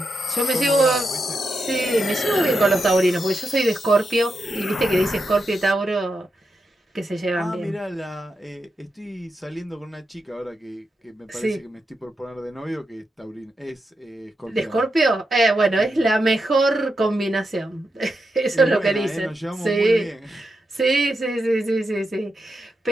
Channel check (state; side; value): normal; both; correlation 0.86